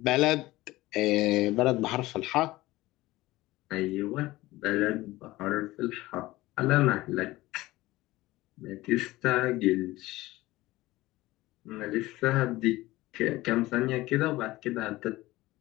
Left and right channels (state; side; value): quieter; right; 18.4 dB